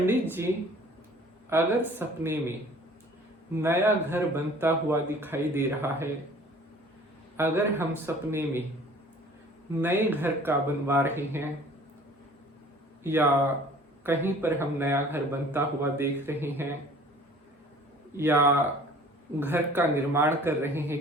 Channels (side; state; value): both; normal; correlation 0.50